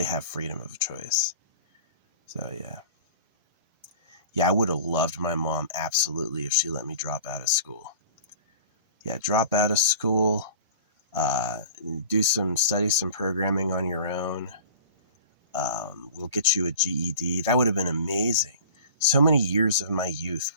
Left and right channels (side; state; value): both; inverted; correlation -0.41